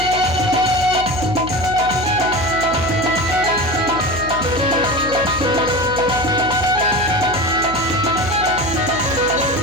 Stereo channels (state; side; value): noise; left; hum, 11 dB below the sound